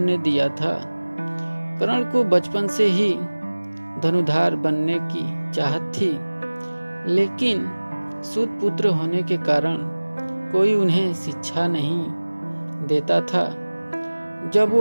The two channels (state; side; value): inverted; both; correlation -1.00